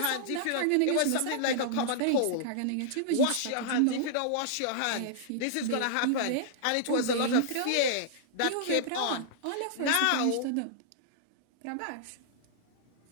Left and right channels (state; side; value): different; both; correlation -0.01